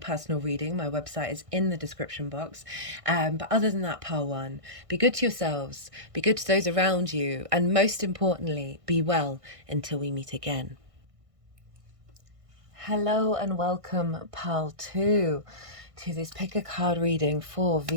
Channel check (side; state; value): left; late; 1.6 ms